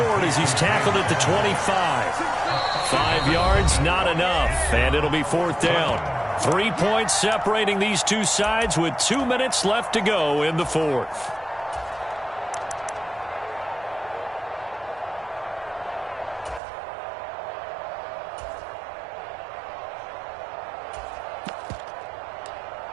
as he's tackled at the 25. 5 yards, not enough, and it'll be 4th down. 3 points separating these two sides with 2 minutes left to go in the 4th.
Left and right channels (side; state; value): left; drops out; at 16.6 s